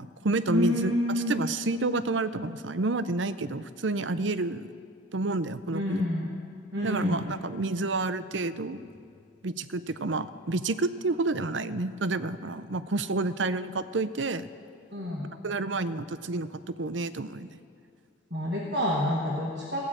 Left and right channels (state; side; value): normal; both; correlation 0.34